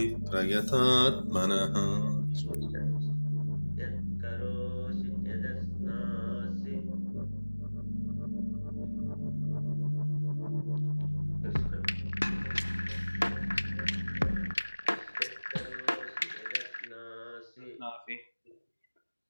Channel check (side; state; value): both; inverted; correlation -1.00